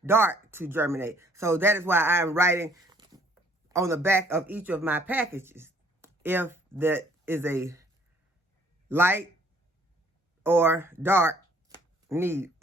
dark to germinate. So that is why I am writing on the back of each of my packages if that is a light or dark need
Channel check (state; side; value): normal; both; correlation 0.60